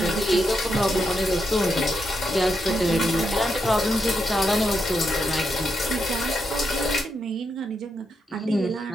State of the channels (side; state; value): both; normal; correlation 0.82